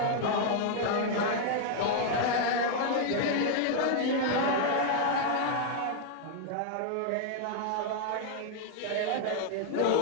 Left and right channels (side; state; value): both; different; correlation 0.00